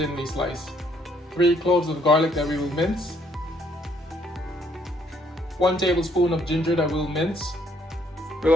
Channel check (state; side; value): normal; both; correlation 0.67